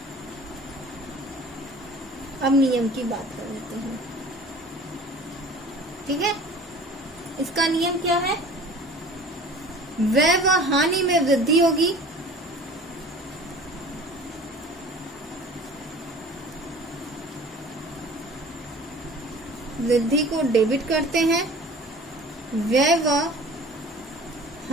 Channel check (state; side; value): normal; both; correlation 0.44